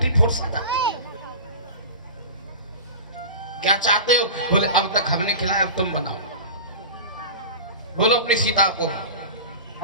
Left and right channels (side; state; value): both; inverted; correlation -0.32